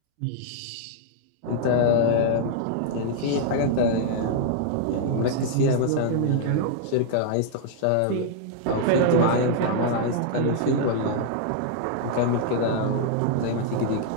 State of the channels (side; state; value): both; different; correlation -0.01